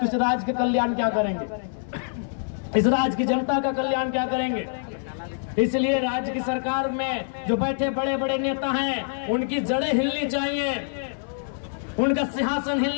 इस राज्य के कल्याण क्या करेंगे, इस राज्य की जनता का कल्याण क्या करेंगे। इसलिए राज्य की सरकार में जो बैठे बड़े बड़े नेता हैं उनकी जड़ें हिलनी चाहिए, उनका सिंहासन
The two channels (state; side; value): silent; right; digital silence